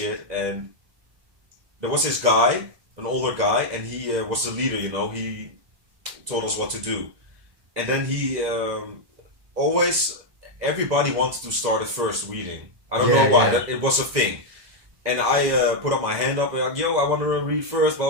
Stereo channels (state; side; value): late; left; 2.0 ms